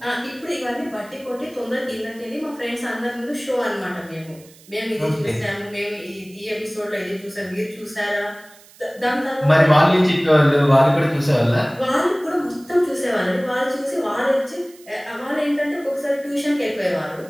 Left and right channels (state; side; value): noise; right; hiss, 24 dB below the sound